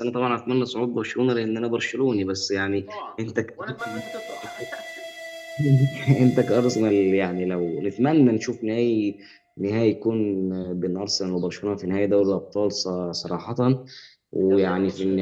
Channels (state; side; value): identical; both; correlation 1.00